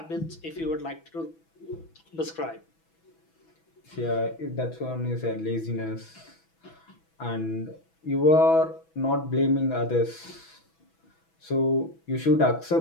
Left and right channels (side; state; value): right; late; 6.1 ms